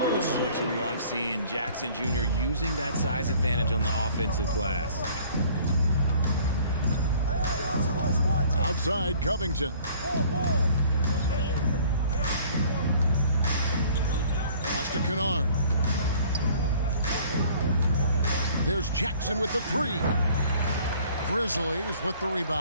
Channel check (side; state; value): both; inverted; correlation -0.53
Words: this is what you love seeing. Jackson Jr. using that size advantage on the offensive glass. Outside, Covington. Pass to Kennard. There's Jackson with the 3. Grizzlies with the